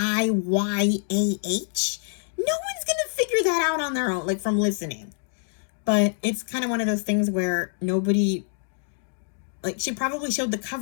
No one's gonna figure that out on their own, like, from listening. But it's kind of one of those things where nobody, like, she probably showed the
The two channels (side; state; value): right; silent; digital silence